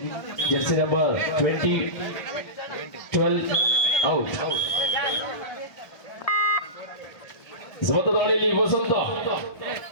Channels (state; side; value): late; right; 1.3 ms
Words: ಜೆರ್ಸಿ ನಂಬರ್ 20 12 ಔಟ್ ಸಮತ ದಾಳಿಯಲ್ಲಿ ವಸಂತ